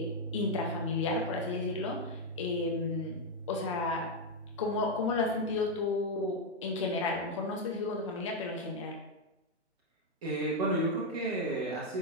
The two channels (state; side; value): normal; both; correlation 0.02